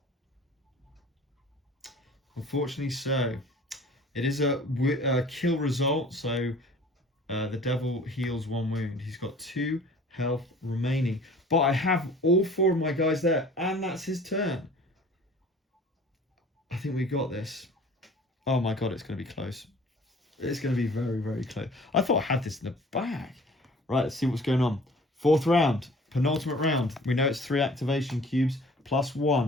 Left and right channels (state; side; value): normal; both; correlation 0.48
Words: Unfortunately so. It is a kill result, so the devil heals 1 wound. He's got 2 health remaining. But I have all 4 of my guys there, and that's his turn. I think we got this. Oh my god, it's going to be close. It's going to be very, very close. I thought I had this in the bag. Right, let's see what's going on. 4th round, penultimate round. We know it's 3 activation cubes plus